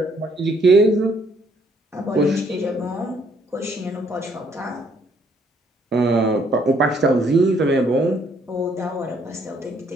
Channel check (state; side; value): normal; both; correlation 0.66